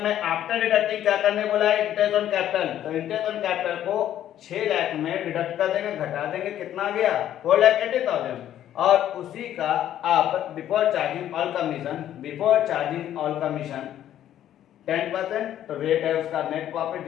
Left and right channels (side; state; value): right; quieter; 11.5 dB